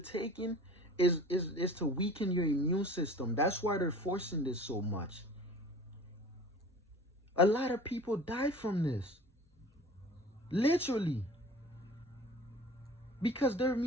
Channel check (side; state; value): both; normal; correlation 0.42